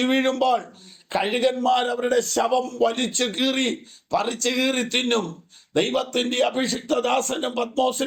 വീഴുമ്പോൾ കഴുകന്മാർ അവരുടെ ശവം വലിച്ചു കീറി പറിച്ചു കീറി തിന്നും. ദൈവത്തിന്റെ അഭിഷിക്തദാസനും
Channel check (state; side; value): identical; both; correlation 1.00